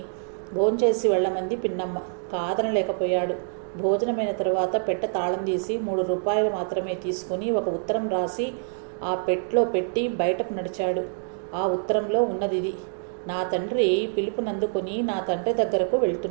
భోంచేసి వెళ్ళమంది పిన్నమ్మ. కాదనలేకపోయాడు. భోజనమైన తరువాత పెట్టె తాళం తీసి 3 రూపాయలు మాత్రమే తీసుకుని ఒక ఉత్తరం రాసి ఆ పెట్లో పెట్టి బయటకు నడిచాడు. ఆ ఉత్తరంలో ఉన్నదిది: నా తండ్రి పిలుపునందుకొని నా తండ్రి దగ్గరకు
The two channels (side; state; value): left; silent; digital silence